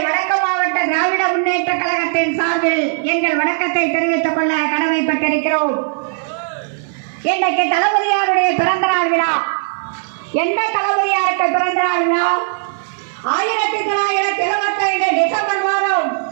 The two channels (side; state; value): left; silent; 58 dB below the other